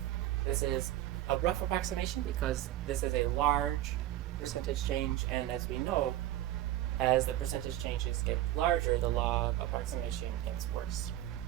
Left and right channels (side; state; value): left; quieter; 14.1 dB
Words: This is a rough approximation because this is a large percentage change, and as we know, as the percentage changes get larger, the log approximation gets worse.